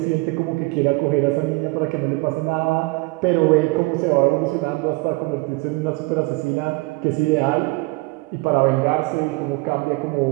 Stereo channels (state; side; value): quieter; left; 24.6 dB